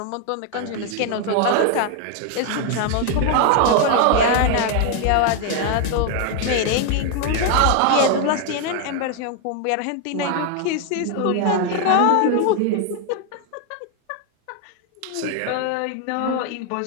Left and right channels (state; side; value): different; both; correlation 0.01